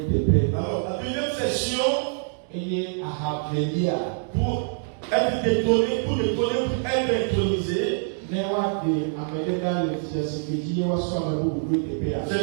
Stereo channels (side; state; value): left; silent; digital silence